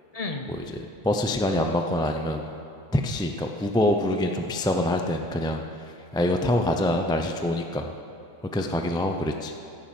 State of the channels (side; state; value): both; normal; correlation 0.57